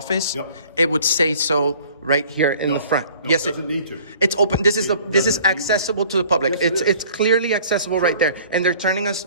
Yep. it would say so right here in the front. No, Yes, it doesn't need to. It's open. This is doesn't need accessible to the public. Yes, it is. It's clearly accessible right there, and they're turning us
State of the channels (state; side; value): inverted; both; correlation -0.52